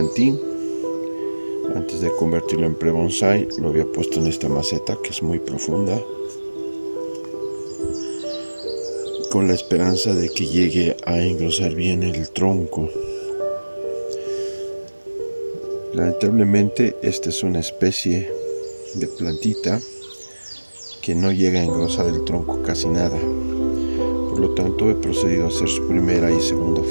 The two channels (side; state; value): both; inverted; correlation -1.00